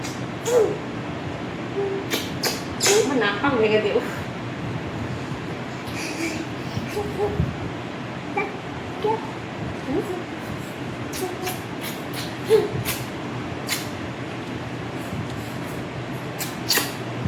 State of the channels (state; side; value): identical; both; correlation 1.00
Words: নাক ভেঙে দেব।